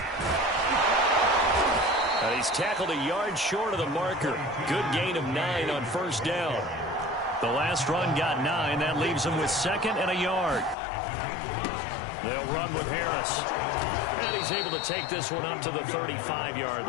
He's tackled a yard short of the marker. Good gain of 9 on first down. The last run got 9. That leaves him with 2nd and a yard. They'll run with Harris. And he's able to take this one up to the 35-yard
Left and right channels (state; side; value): drops out; right; at 10.8 s